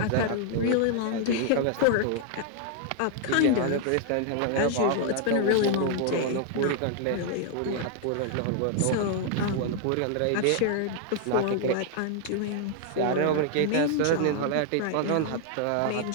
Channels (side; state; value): both; different; correlation 0.00